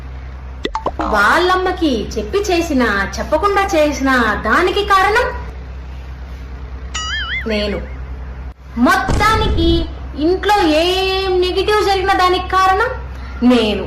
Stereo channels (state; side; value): identical; both; correlation 1.00